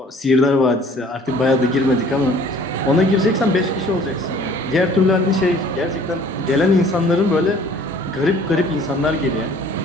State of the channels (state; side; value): normal; both; correlation 0.53